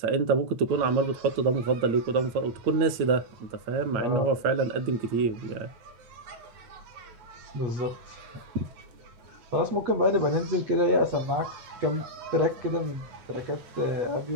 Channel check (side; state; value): left; late; 9.0 ms